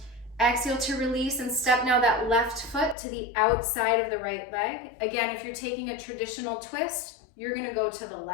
Exhale to release and step now that left foot to the outside of the right leg. Again, if you're taking a traditional twist, you're gonna go to the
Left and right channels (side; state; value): right; drops out; at 3.0 s